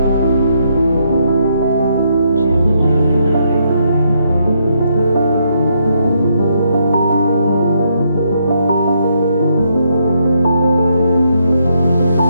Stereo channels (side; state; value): both; inverted; correlation -0.75